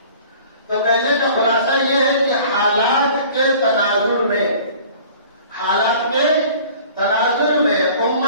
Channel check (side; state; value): both; inverted; correlation -0.47